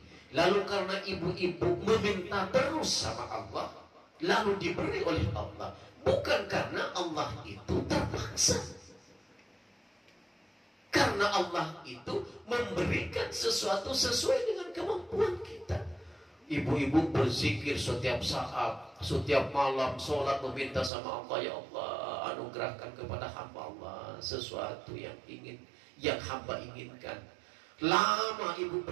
lalu karena ibu-ibu meminta terus sama Allah, lalu diberi oleh Allah, bukan karena Allah itu terpaksa, karena Allah itu memberikan sesuatu sesuai dengan kemampuan kita. Ibu-ibu berzikir setiap saat, setiap malam, sholat meminta sama Allah, ya Allah anugerahkan kepada hamba Allah sesuatu yang hamba inginkan. Lama ibu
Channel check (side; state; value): left; drops out; at 20.9 s